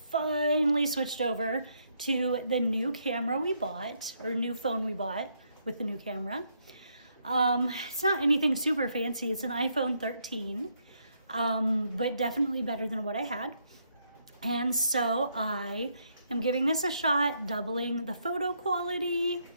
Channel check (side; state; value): both; inverted; correlation -0.74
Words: switched over to the new camera we bought, or new phone we bought with the new camera. It's not anything super fancy. It's an iPhone 13, but definitely better than what I had. And so I am giving this a shot, doubling the photo quality,